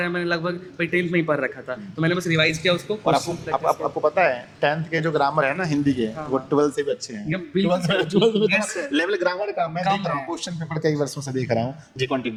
है मैंने लगभग भाई 10th में ही पढ़ रखा था, तो मैंने बस रिवाइज किया उसको। और आपको पता है 10th के जो ग्रामर है ना हिंदी के, वो 12th से भी अच्छे हैं। 12th लेवल ग्रामर का मैं देख रहा हूँ, क्वेश्चन पेपर कई वर्षों से देख रहा हूँ जी।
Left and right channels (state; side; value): identical; both; correlation 1.00